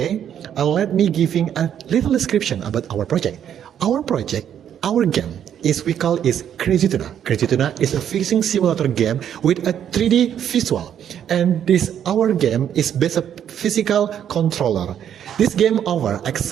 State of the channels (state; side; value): quieter; left; 9.5 dB